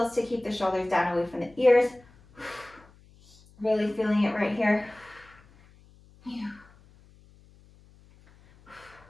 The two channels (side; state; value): left; noise; hum, 27 dB below the sound